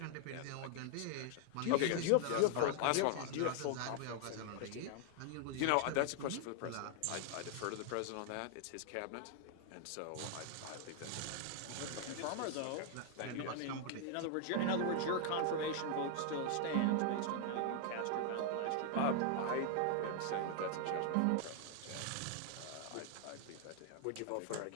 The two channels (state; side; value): different; both; correlation 0.00